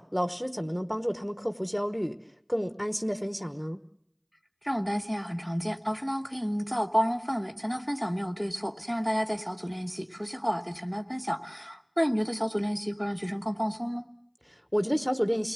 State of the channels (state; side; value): identical; both; correlation 1.00